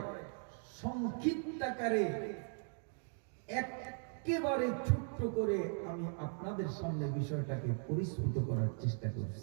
সংক্ষিপ্ত আকারে একেবারে ছোট্ট করে আমি আপনাদের সামনে বিষয়টাকে পরিস্ফুট করার চেষ্টা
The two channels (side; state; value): left; silent; 52 dB below the other